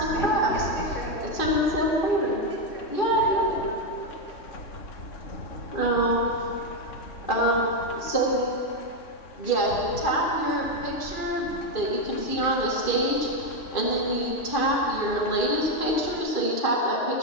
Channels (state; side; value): late; right; 2.5 ms